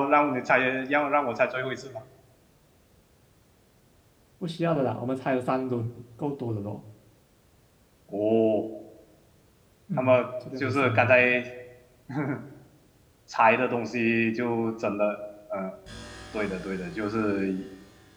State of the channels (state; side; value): identical; both; correlation 1.00